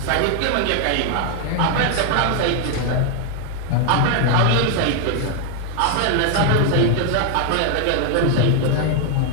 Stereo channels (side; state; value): both; different; correlation 0.00